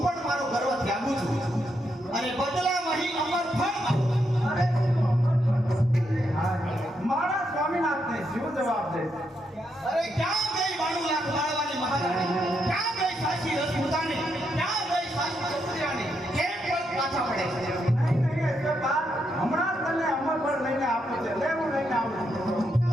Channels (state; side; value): normal; both; correlation 0.80